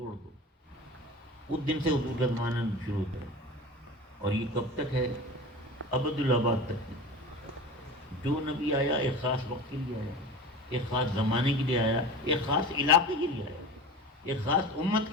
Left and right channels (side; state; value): both; normal; correlation 0.32